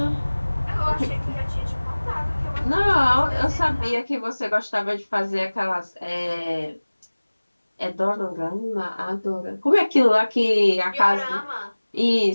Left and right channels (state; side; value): inverted; both; correlation -1.00